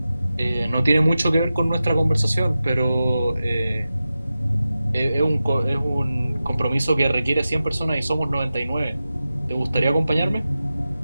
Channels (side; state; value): both; inverted; correlation -0.93